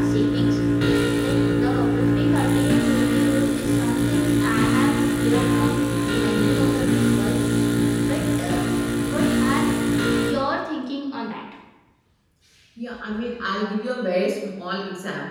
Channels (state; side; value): identical; both; correlation 1.00